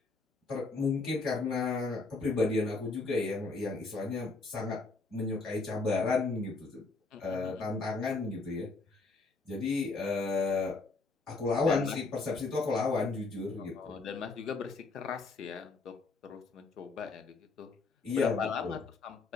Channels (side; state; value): right; quieter; 3.8 dB